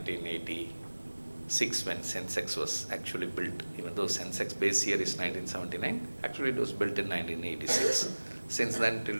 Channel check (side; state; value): both; inverted; correlation -1.00